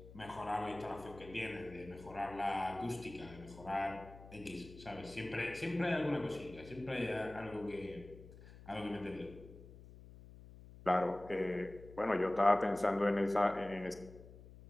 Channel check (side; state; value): left; noise; hum, 18 dB below the sound